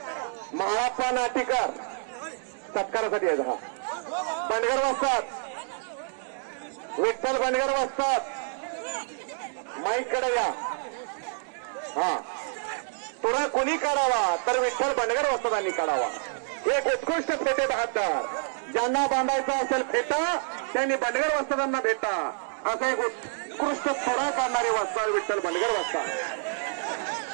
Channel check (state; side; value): silent; left; digital silence